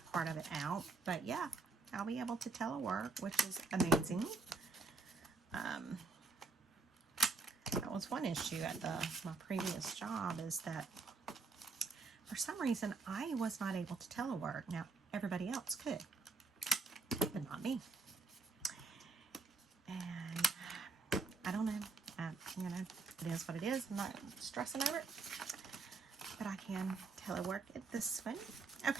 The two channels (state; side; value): quieter; left; 4.0 dB